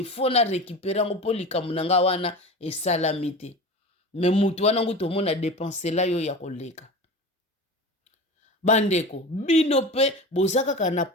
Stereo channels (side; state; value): both; normal; correlation 0.31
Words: fo na rekipere yango mpo likambo na nga wana esalami te me mutu wana ngutu omona depensela yo ya koleka. Bandeko bino pe boza kaka na